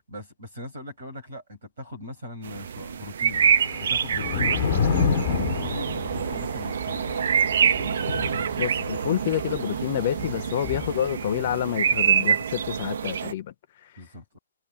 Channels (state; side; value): inverted; both; correlation -0.60